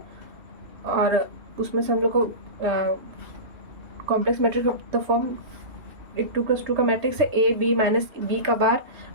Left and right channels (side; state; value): left; late; 3.3 ms